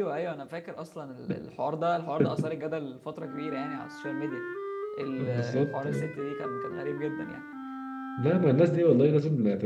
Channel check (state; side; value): identical; both; correlation 1.00